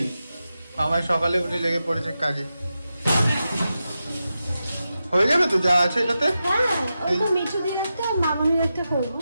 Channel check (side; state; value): both; inverted; correlation -0.90